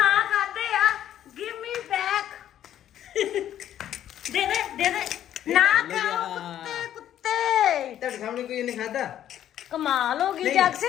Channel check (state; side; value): quieter; right; 11.2 dB